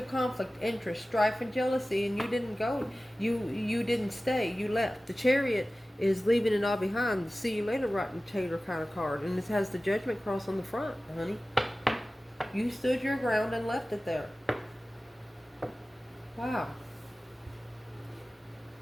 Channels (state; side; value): normal; both; correlation 0.96